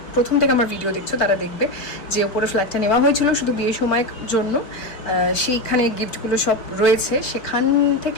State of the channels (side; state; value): right; late; 4.8 ms